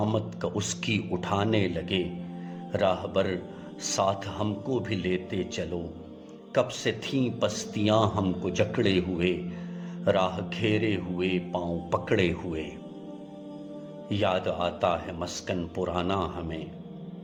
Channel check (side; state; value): both; identical; correlation 1.00